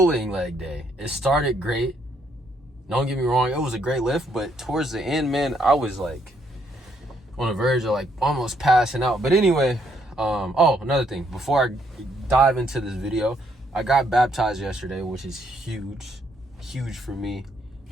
leg day. It started great. Don't get me wrong, it was a great lift, but towards the end, man, I was like on the verge of like almost passing out. But anyway, another thing, before I dive into this video, I got baptized yesterday, which is huge for me,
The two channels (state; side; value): normal; both; correlation 0.72